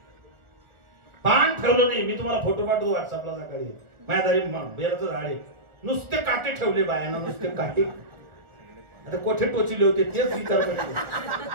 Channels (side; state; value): left; late; 1.5 ms